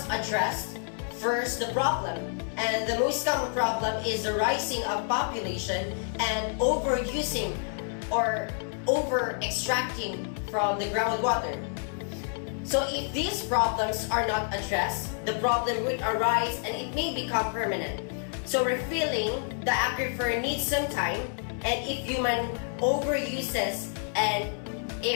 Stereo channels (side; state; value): right; silent; 59 dB below the other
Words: address First, the problem, and the most common problem is the rising of population and overusing or over-extracting from the groundwater. So if these problems are not addressed, the problem would arise and it may become permanent. So refilling the aquifer needs some time, and if human overuses and